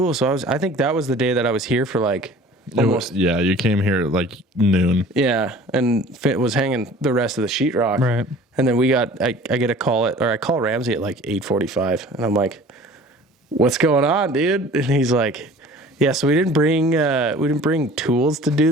So I think that was the day that I was here for like almost. Yeah, you came here at like noon. Yeah, and was hanging the rest of the sheetrock. Right. And then I get a call I call Ramsey at like 8:45, and I'm like, "What's going on, dude?" And he's like, Yeah, so we didn't bring tools to do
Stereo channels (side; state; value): both; normal; correlation 0.46